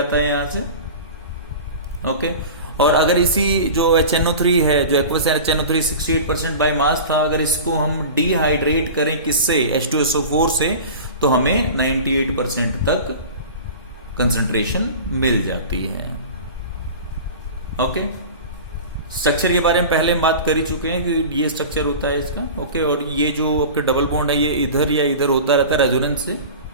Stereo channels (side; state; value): both; inverted; correlation -0.34